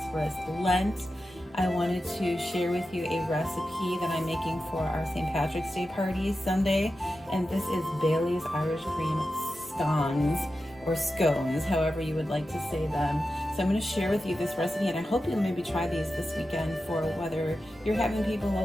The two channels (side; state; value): both; normal; correlation 0.92